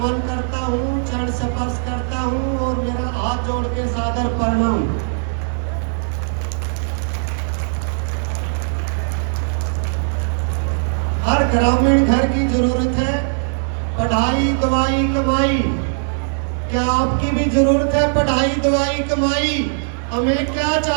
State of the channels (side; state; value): left; silent; digital silence